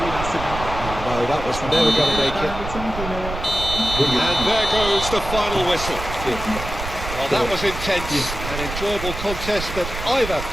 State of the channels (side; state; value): right; noise; rumble, 8 dB below the sound